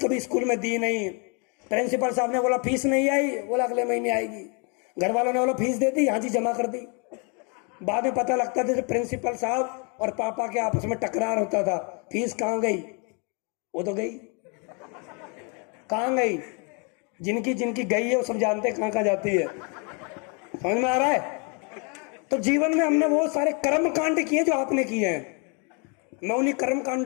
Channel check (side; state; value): right; quieter; 35.1 dB